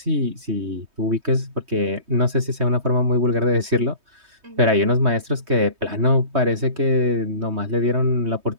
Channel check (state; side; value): late; left; 3.2 ms